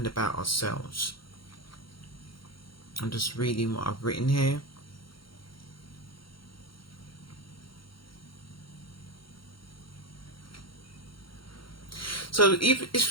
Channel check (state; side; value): late; right; 0.73 ms